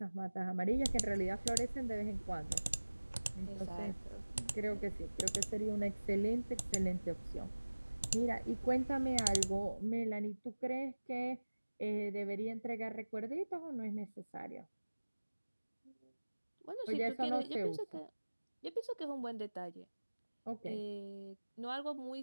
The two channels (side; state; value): both; inverted; correlation -1.00